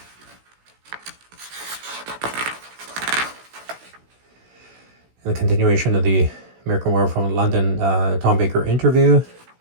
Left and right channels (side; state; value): left; late; 16 ms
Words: And the continuation of the American Werewolf in London Tom Baker interview.